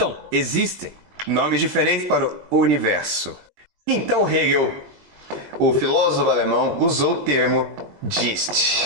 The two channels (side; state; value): left; late; 20 ms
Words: existem nomes diferentes para o universo. Então Hegel, o filósofo alemão, usou o termo